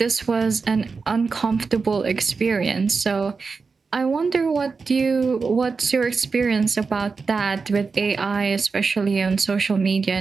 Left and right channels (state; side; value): quieter; left; 4.7 dB